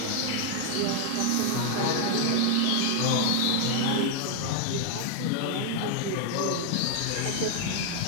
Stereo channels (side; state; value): both; different; correlation 0.00